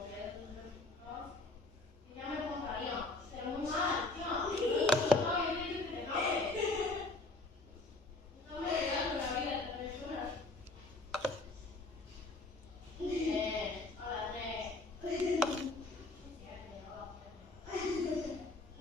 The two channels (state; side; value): quieter; right; 3.1 dB